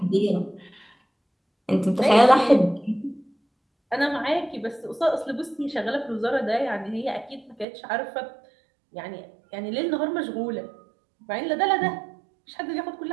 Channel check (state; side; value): drops out; left; at 7.7 s